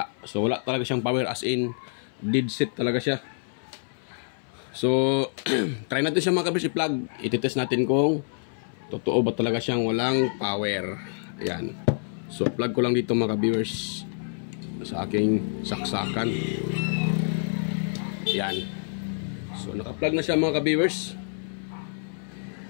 So wala talaga siyang power, as in dead set talaga siya. So try natin siya mga ka-viewers i-plug. Ititest natin kung totoo ba talaga siyang walang power. Ayan. So plug ko lang dito mga viewers sa aking saksakan. Ayan. So naka-plug na siya mga viewers.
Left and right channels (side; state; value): right; silent; 59 dB below the other